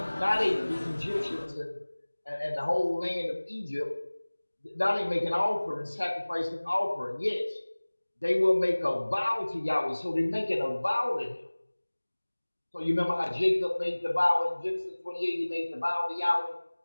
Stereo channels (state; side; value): inverted; both; correlation -1.00